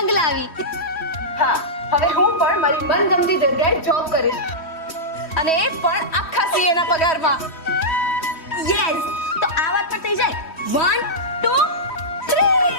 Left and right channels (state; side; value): late; right; 3.1 ms